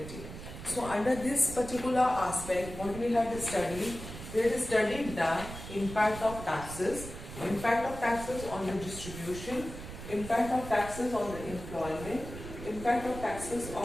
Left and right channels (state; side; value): noise; right; rumble, 11 dB below the sound